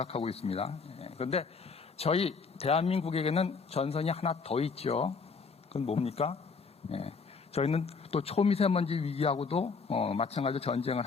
있습니다. 그런데 저희 대한민국에게는 전선이 하나 더 있죠. 그건 뭡니까? 저희는 또 초미세먼지 위기하고도 마찬가지로 전쟁을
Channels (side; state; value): right; quieter; 4.9 dB